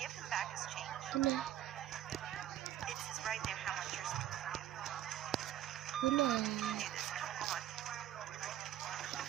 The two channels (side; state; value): left; quieter; 12.0 dB